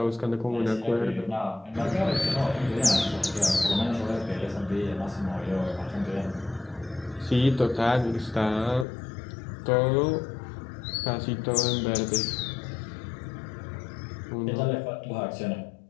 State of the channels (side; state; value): right; drops out; at 8.8 s